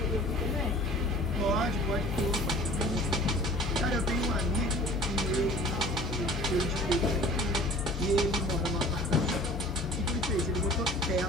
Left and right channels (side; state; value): both; normal; correlation 0.46